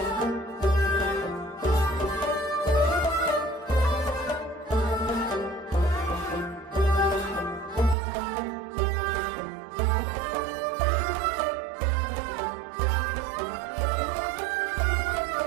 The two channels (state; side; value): drops out; left; at 8.0 s